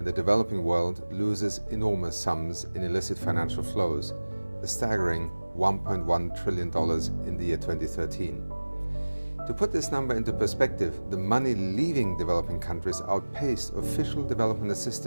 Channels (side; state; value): both; inverted; correlation -1.00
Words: the developing world loses enormous sums in illicit financial flows, a staggering $1.1 trillion in the year 2013. To put this number into perspective, the money leaving developing countries outpaced official development